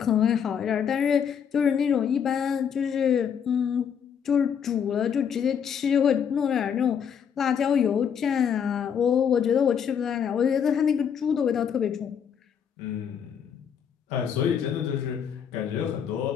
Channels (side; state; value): right; quieter; 7.7 dB